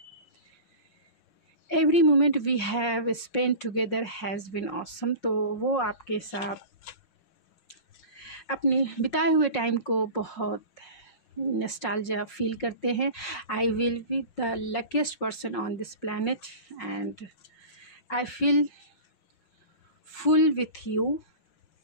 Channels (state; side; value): late; right; 5.5 ms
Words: Every moment we have spend together has been awesome. तो वो आपके साथ अपने बिताए हुए टाइम को बहुत नॉस्टैल्जिया फील करते हैं। I will be the luckiest person on this planet and I feel full with you